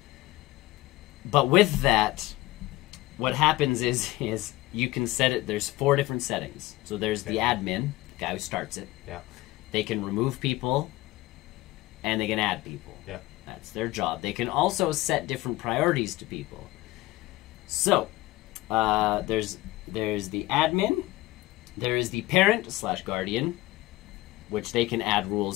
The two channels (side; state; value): right; quieter; 18.4 dB